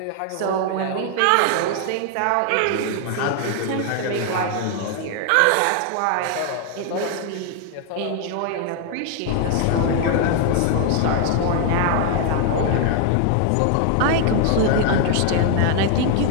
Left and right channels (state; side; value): different; both; correlation 0.00